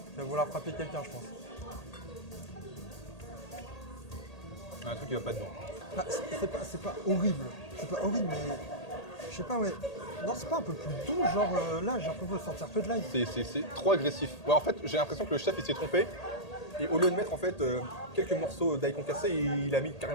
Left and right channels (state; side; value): late; right; 1.8 ms